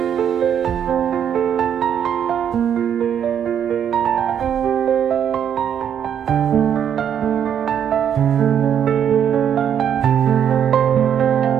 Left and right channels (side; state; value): left; quieter; 8.9 dB